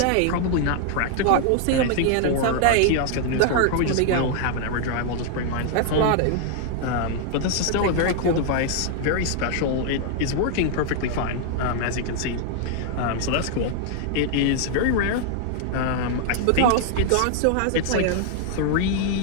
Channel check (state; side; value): different; both; correlation 0.00